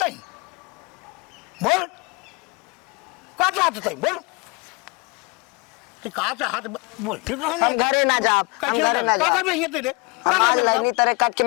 नहीं बोल का तो हाथ नहीं बोल तो का तो हाथ बोल ठीक है हम घरे ना जा हम घरे ना जा का भी ये तेरे हमार लाइनी तरह कट के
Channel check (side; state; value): right; quieter; 28.6 dB